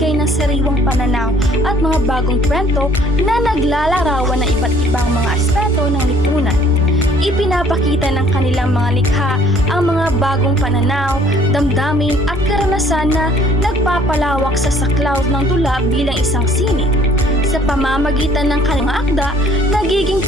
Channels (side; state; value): both; normal; correlation 0.58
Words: ng sariwang pananaw at mga bagong kwento na naglalarawan ng iba't ibang mga aspeto ng lipunan. Ipinapakita ng kanilang mga likha ang mga bagong pananaw, damdamin at karanasan na nagpapalawak sa saklaw ng dula bilang isang sining. Sa pamamagitan ng kanilang akda, nagiging